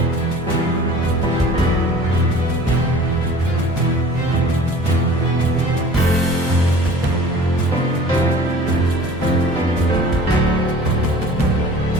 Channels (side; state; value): both; normal; correlation 0.45